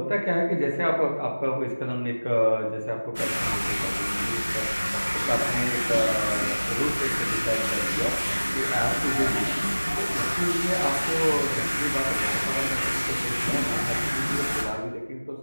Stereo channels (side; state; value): both; inverted; correlation -1.00